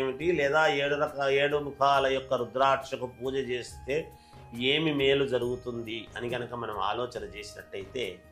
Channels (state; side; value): identical; both; correlation 1.00